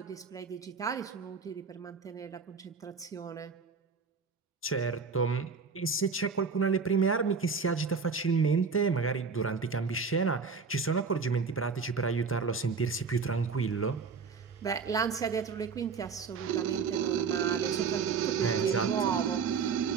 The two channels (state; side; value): quieter; left; 5.3 dB